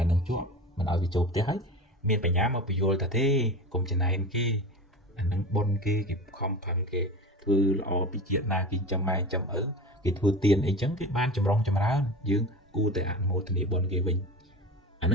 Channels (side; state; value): both; normal; correlation 0.30